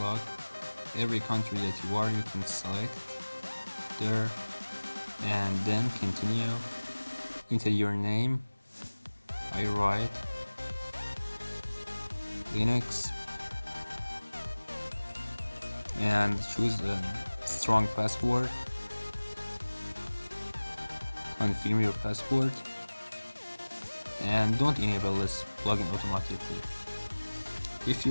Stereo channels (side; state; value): both; inverted; correlation -1.00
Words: Every country that you are, you can select there, and then continue. Enter your name. I write Linux and choose a strong password. Confirm your password, and don't enable this plugin automatically. If